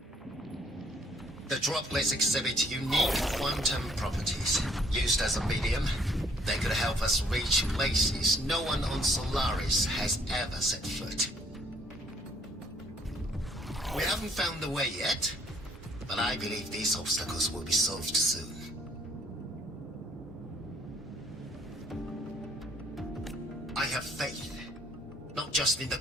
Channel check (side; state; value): both; normal; correlation 0.64